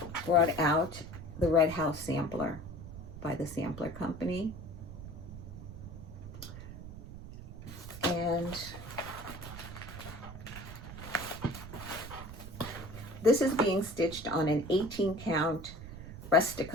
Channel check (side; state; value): right; noise; rumble, 11 dB below the sound